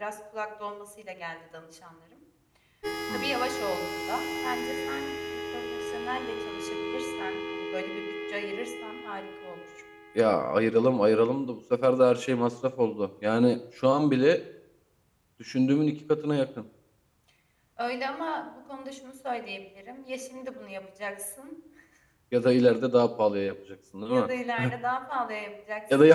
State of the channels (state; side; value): identical; both; correlation 1.00